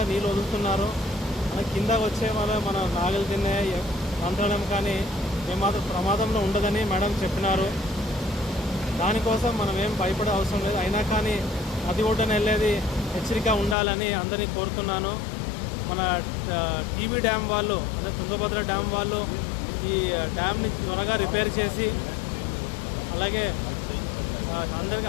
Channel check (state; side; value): drops out; right; at 13.8 s